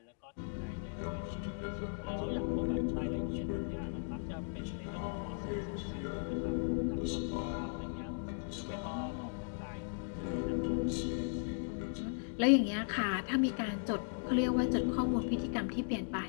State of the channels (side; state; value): right; silent; digital silence